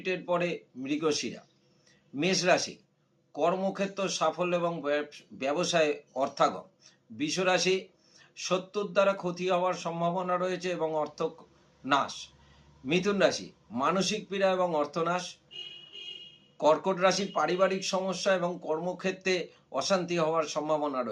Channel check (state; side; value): identical; both; correlation 1.00